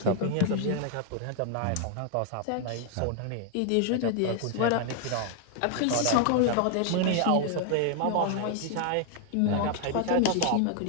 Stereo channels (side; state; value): both; different; correlation 0.00